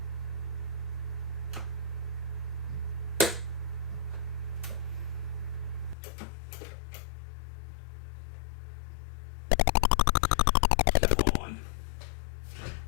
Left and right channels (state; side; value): drops out; right; at 6.0 s